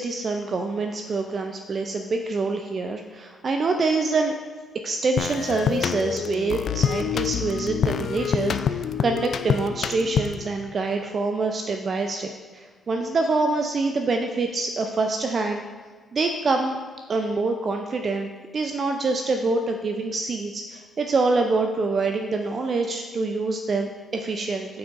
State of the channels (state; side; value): normal; both; correlation 0.76